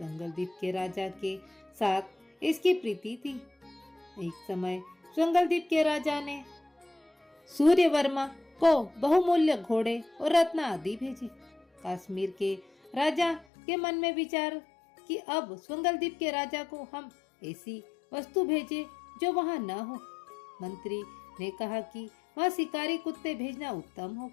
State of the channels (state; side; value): drops out; right; at 13.5 s